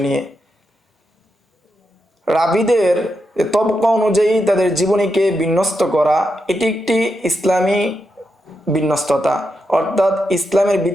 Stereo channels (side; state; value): both; normal; correlation 0.85